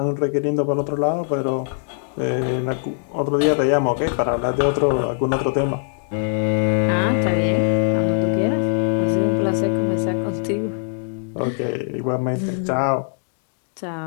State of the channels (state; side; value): silent; right; digital silence